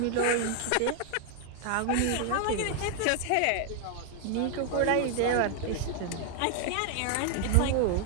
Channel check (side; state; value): both; different; correlation 0.00